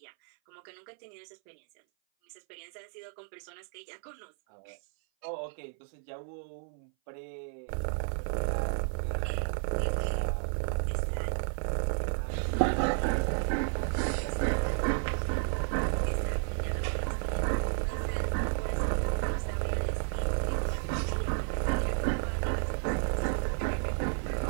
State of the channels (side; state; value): left; silent; 56 dB below the other